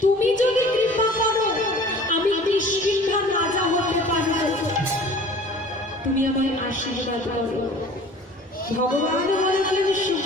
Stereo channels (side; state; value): both; normal; correlation 0.46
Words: তুমি যদি কৃপা করো, আমি কিষ্কিন্ধার রাজা হতে পারবো, তুমি আমায় আশীর্বাদ করো। ভগবান বলেছেন,